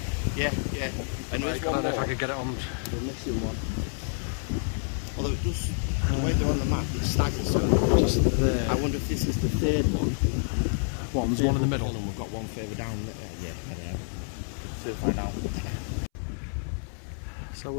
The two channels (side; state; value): right; silent; 59 dB below the other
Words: Yeah, yeah. And I don't know if I could get it on. The missing one. Although it does, the way they're on the map, it staggers, so just there. I wonder if this is the third one. There's one in the middle. And we've got one further down. Yeah, I don't know. So we'll find out. So